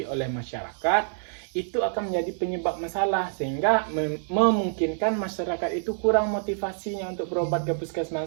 oleh masyarakat, itu akan menjadi penyebab masalah sehingga memungkinkan masyarakat itu kurang motivasinya untuk berobat ke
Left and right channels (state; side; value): silent; left; 60 dB below the other